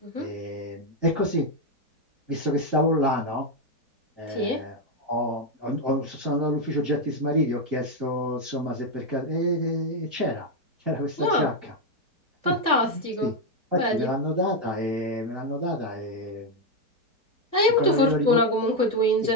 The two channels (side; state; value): left; late; 4.2 ms